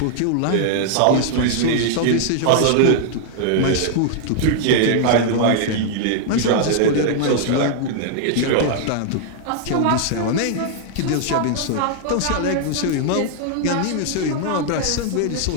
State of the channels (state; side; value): different; both; correlation 0.00